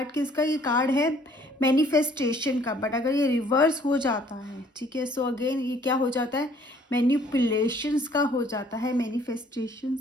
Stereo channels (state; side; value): normal; both; correlation 0.59